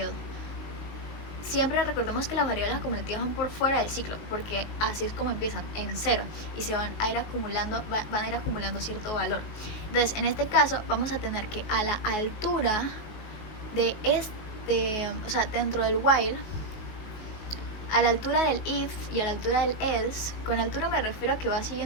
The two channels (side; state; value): right; late; 19 ms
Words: Siempre recordemos que las variables acumulativas van por fuera del ciclo, porque así es como empiezan, en 0, y se van a ir acumulando cierto valor. Entonces, en este caso, vamos a tener que a la altura de o sea, dentro del while, a la altura del if y a la altura del else, con altura me refiero a que va